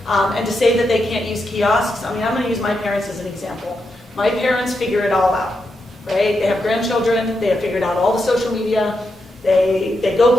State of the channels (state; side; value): normal; both; correlation 0.85